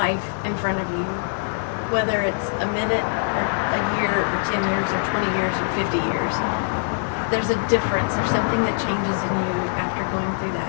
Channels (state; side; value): silent; right; digital silence